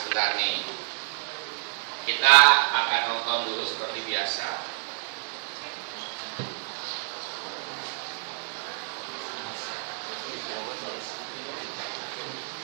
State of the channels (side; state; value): left; silent; 56 dB below the other